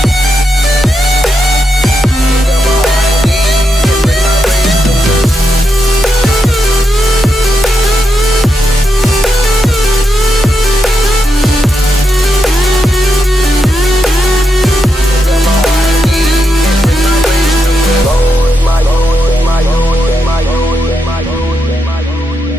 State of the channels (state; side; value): normal; both; correlation 0.84